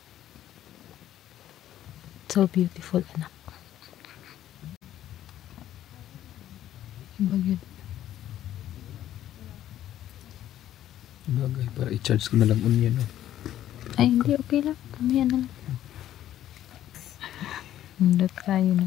So beautiful, anak. Yung bagyo. Bagay, para i-charge ko na lang unya, no? Ay, hindi, okay lang. Mamaya na lang. Nandot tayo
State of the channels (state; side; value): quieter; right; 12.2 dB